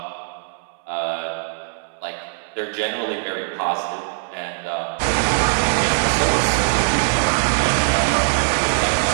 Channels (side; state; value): left; silent; 63 dB below the other